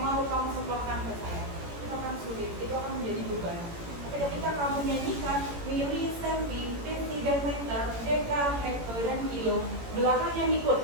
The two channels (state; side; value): late; left; 18 ms